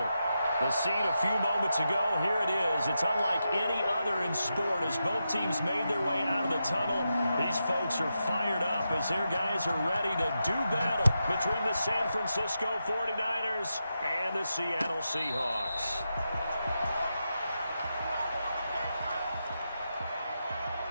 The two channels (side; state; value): both; inverted; correlation -0.87